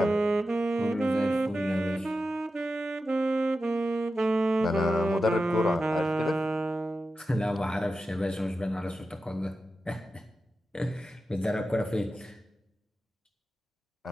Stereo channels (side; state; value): both; normal; correlation 0.91